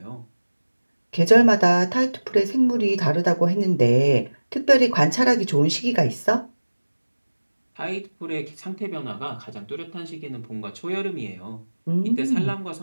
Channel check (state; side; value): inverted; both; correlation -1.00